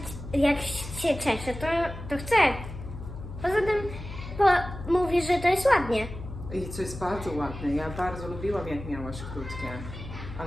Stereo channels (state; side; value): noise; left; hum, 11 dB below the sound